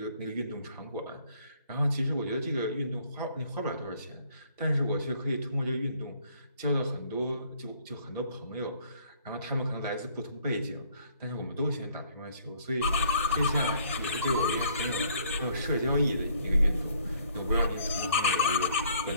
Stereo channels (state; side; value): inverted; both; correlation -0.61